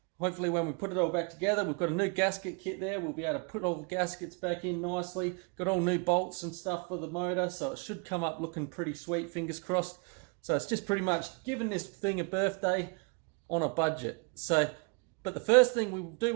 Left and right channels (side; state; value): left; quieter; 34.5 dB